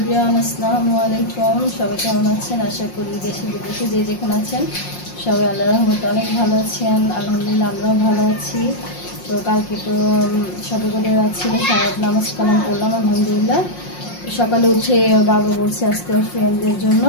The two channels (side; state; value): right; late; 5.6 ms